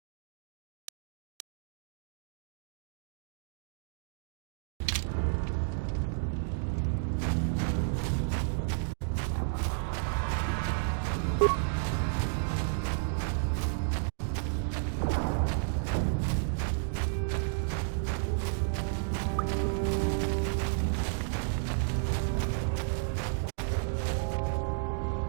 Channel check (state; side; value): silent; left; digital silence